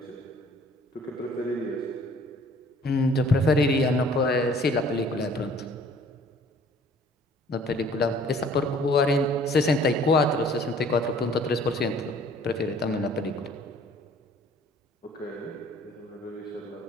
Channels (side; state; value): both; normal; correlation 0.55